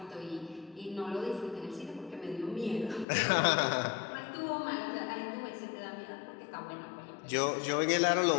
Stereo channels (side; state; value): right; drops out; at 3.1 s